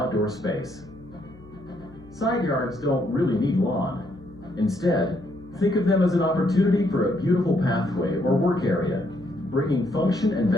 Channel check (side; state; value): left; noise; hum, 22 dB below the sound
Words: space. Side yards don't really need lawn. Instead, think of them as an opportunity for a beautiful pathway or work area, bringing function and